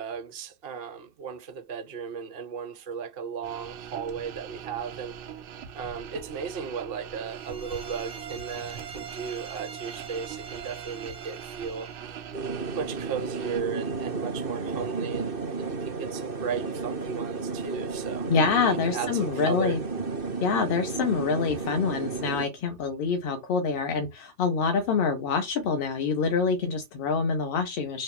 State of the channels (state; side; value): late; right; 2.6 ms